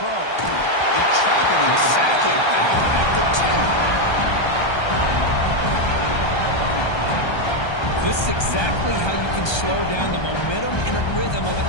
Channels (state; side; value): late; right; 1.3 ms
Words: They trap him and sack him back at the 10. This is exactly how you can slow down the momentum and a rhythm of an